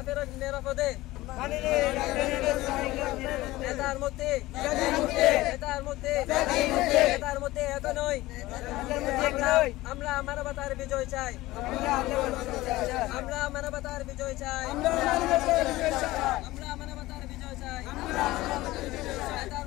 ফেরত নিরাপদে। নেতার মুক্তি। নেতার মুক্তি। নেতার মুক্তি এখনই। আমরা মানবতার বিজয় চাই। আমরা মানবতার বিজয় চাই। আমরা মানবতার বিজয় চাই। নেতার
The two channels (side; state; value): right; quieter; 18.1 dB